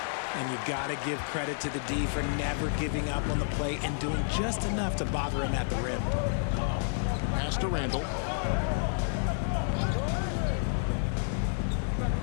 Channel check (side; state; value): right; silent; digital silence